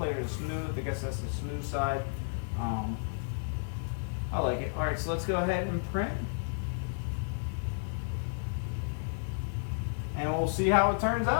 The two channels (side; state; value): right; silent; digital silence